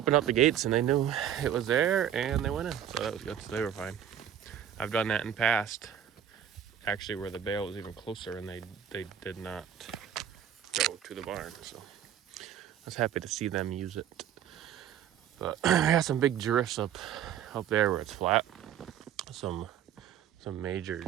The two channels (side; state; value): left; quieter; 9.6 dB